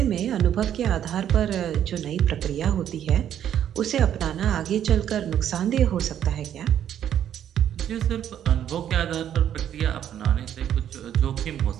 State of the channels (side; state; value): left; quieter; 10.2 dB